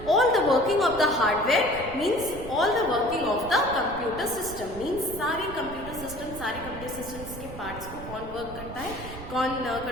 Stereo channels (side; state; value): right; noise; rumble, 12 dB below the sound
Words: all the working of the hardware, means all the working of the computer system, means सारे computer systems के parts को कौन work करता है, कौन